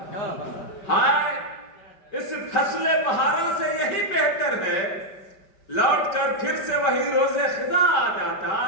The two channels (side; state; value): right; late; 5.2 ms